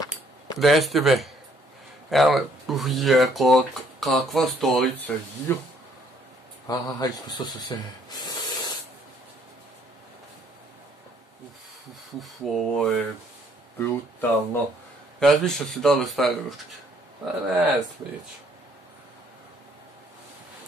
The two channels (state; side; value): normal; both; correlation 0.65